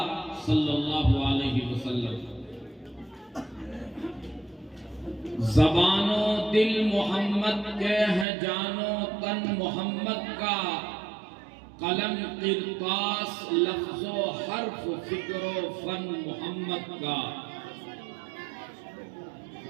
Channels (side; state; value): left; drops out; at 8.2 s